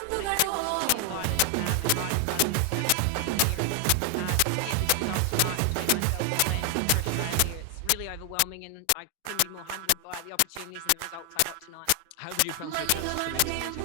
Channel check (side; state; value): both; different; correlation 0.00